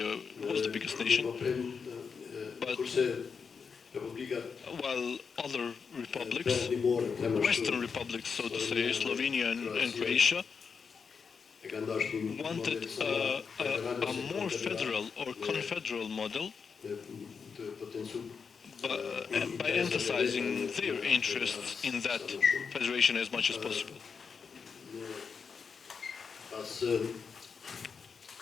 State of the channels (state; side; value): quieter; right; 5.8 dB